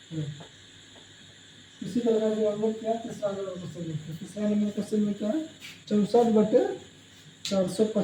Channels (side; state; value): both; identical; correlation 1.00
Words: इसी प्रकार से हम लोग क्या तीसरा नंबर क्वेश्चन देखते हैं। तीसरा नंबर क्वेश्चन में क्या है?